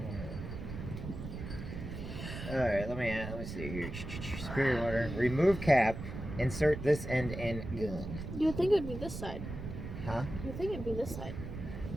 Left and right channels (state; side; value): noise; right; rumble, 8 dB below the sound